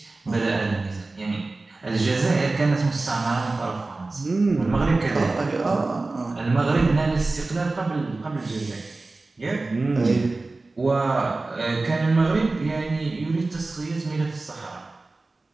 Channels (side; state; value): left; quieter; 3.3 dB